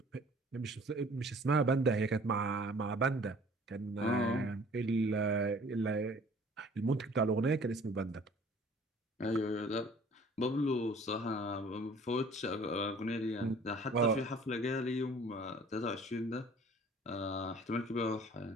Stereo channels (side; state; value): both; normal; correlation 0.51